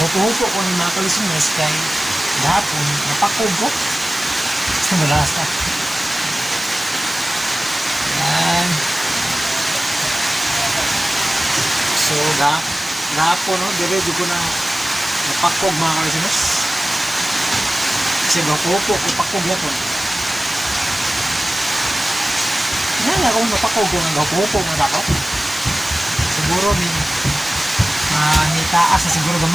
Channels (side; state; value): both; normal; correlation 0.97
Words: ko ng mga ka-listeners kay dahapon napakog ko. Gusto mo lakas ka. Ayan. So, gahapon, no? Diretso ko na napakog mga ka-listeners. Kasi gapupo ko pakog yapon. Yan akong napakog ko ng gapupo mga dako. Siguro ni taas na siguro